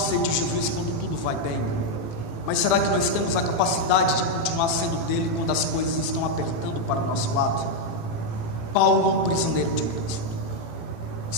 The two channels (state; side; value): late; right; 18 ms